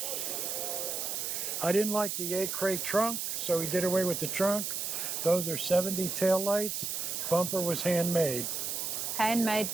I didn't like the 8-crate trunk, so we did away with the trunk. Those are 70 tail lights. Bumper was handmade. Handmade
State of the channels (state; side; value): noise; right; hiss, 2 dB below the sound